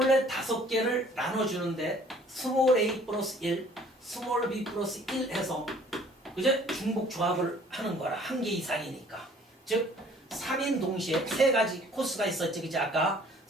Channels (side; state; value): both; normal; correlation 0.55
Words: 5개를 나눠주는데 스몰 a 플러스 1, 스몰 b 플러스 1 해서 그제 중복 조합을 하는 거라. 1개 이상이니까. 즉 3인 동시에 3가지 코스가 있었지, 그지? 아까